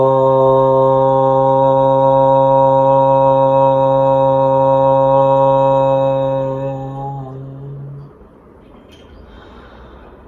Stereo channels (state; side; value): identical; both; correlation 1.00